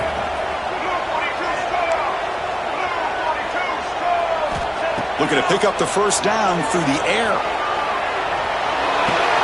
Looking to pick up the first down through the air.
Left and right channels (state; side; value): identical; both; correlation 1.00